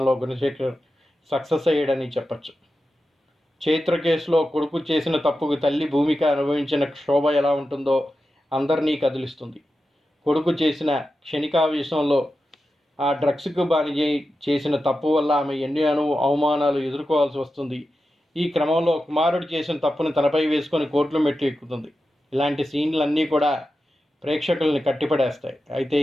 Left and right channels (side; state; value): both; normal; correlation 0.91